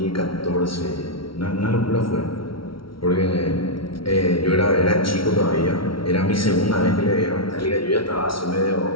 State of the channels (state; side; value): late; right; 0.74 ms